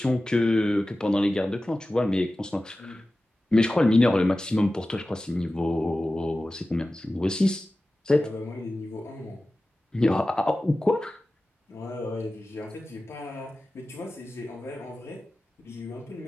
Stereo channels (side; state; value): both; normal; correlation 0.95